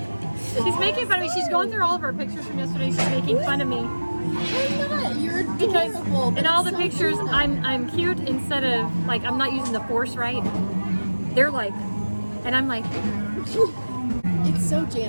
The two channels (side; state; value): both; inverted; correlation -1.00